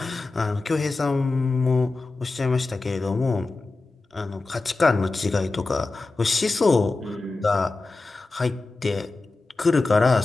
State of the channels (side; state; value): right; quieter; 3.5 dB